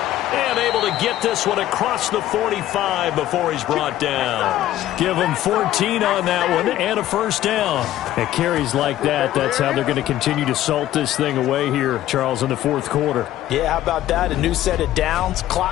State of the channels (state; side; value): quieter; right; 13.6 dB